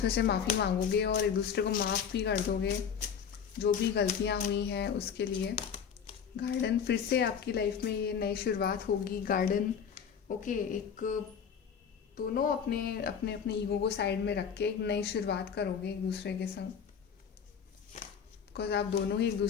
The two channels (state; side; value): quieter; right; 7.3 dB